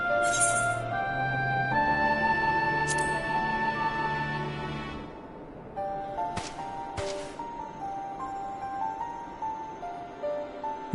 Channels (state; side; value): identical; both; correlation 1.00